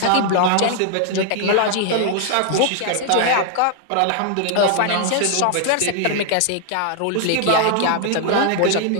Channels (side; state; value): both; different; correlation 0.00